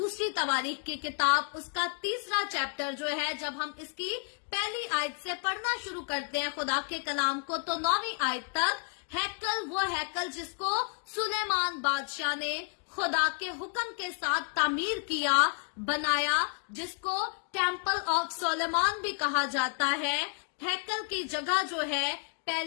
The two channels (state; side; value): quieter; right; 39.4 dB